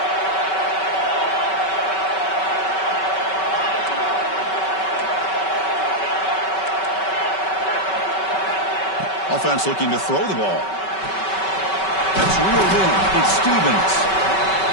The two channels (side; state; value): right; late; 5.3 ms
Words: Offense looking to throw the ball. That's reeled in. It's Stevens.